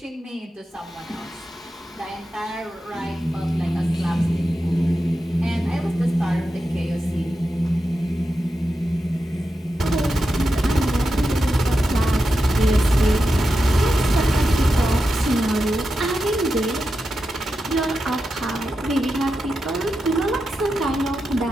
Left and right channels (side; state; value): both; normal; correlation 0.89